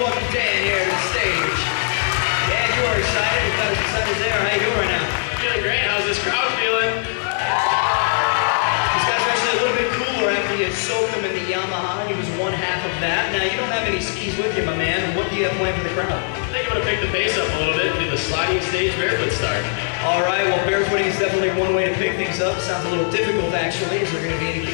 welcome Dan here to the stage. Dan, you are excited. You've got us excited there. How you doing right now? Feeling great. How's this crowd feeling? These guys are actually a little bit cooler after you soaked them in the Yamaha. He was one half of that. Now, you don't have any skis with you, my man. What do you have planned for the crowd? I think I'm going to pick the pace up a little bit and do the sliding stage barefoot start. All right, well, barefooting is definitely one way to pick things up. Sounds a little difficult, actually. Is there going to be anything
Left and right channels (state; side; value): silent; right; digital silence